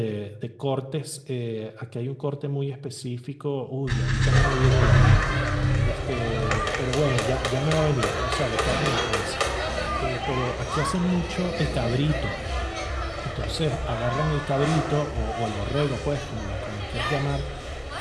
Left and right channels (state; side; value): identical; both; correlation 1.00